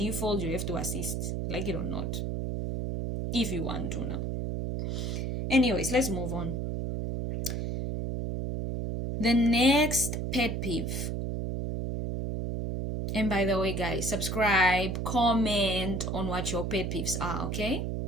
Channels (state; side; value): noise; right; hum, 2 dB below the sound